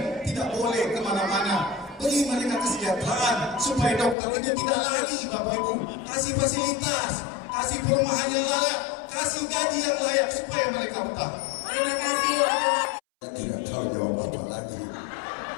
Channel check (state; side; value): drops out; right; at 4.2 s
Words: tidak boleh kemana-mana. Beri mereka kesejahteraan supaya dokter ini tidak lari Bapak Ibu. Kasih fasilitas, kasih perumahan yang layak, kasih gaji yang layak supaya mereka betah. Terima kasih. Saya tidak tahu jawab apa lagi.